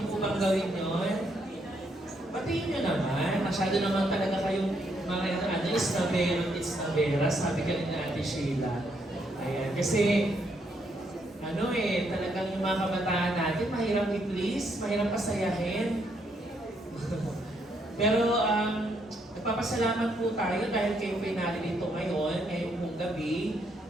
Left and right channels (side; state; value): both; normal; correlation 0.74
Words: po bang gawin yun? Batiin niyo naman. Masyado naman talaga kayong mga it's navera, sabi ka rin na Ate Sheila. Ayan, kasi talagang yung mga kabataan natin, mahirap i-please, mahirap pasayahin. Pero nagpapasalamat po tayo dahil kayo po naririto ngayon, ngayong pong gabi,